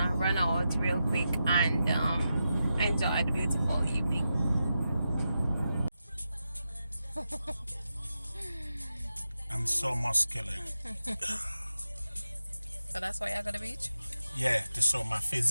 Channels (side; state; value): both; inverted; correlation -0.89